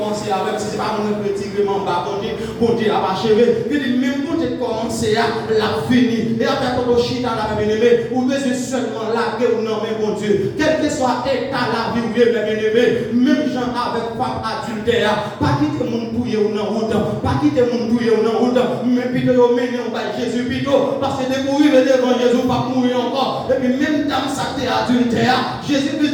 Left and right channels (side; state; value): both; identical; correlation 1.00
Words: avec, si ce n'est pas mon petit gréement, mon Dieu a achevé. Je dis, même mon Dieu commence à la finir. Et après, quand on chie dans la bien-aimée, ou besoin seulement la guerre ou non, bon Dieu, quel que soit l'état la vie où il est bien-aimé, même gens avec femme adultère, pas quitter mon bouillé ou non honte, pas quitter mon bouillé ou non honte, mais plutôt mener on va Jésus plutôt, parce que dès qu'on arrive devant Jésus, pas mourir encore, et puis même dans sa terre adultère, Jésus veut